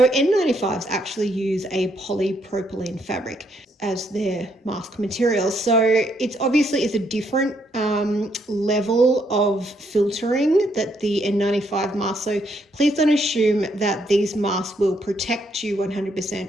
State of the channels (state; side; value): normal; both; correlation 0.73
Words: N95s actually use a polypropylene fabric as their mask material. So it's obviously is a different level of filtering that the N95 mask. So please don't assume that these masks will protect you